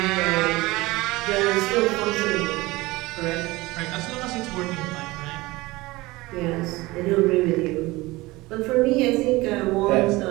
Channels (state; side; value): quieter; left; 20.8 dB